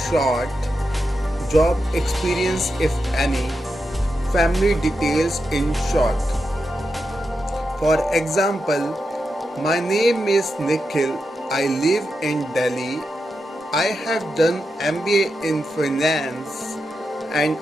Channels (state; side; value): normal; both; correlation 0.88